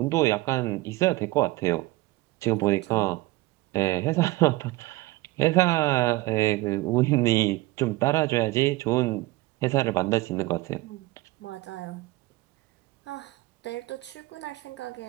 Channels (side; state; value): left; quieter; 19.5 dB